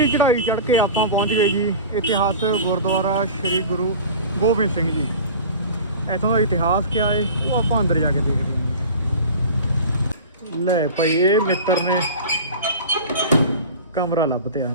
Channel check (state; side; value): inverted; both; correlation -0.36